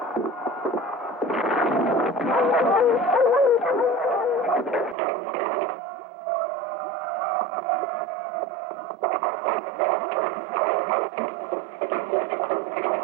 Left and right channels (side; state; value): left; drops out; at 5.0 s